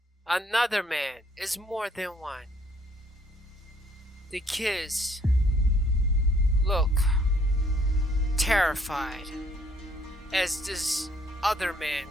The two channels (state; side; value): normal; both; correlation 0.64